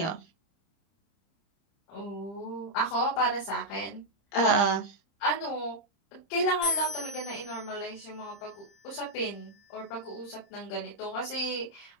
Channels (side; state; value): right; late; 30 ms